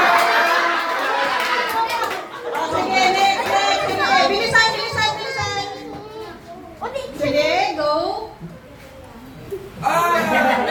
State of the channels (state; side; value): identical; both; correlation 1.00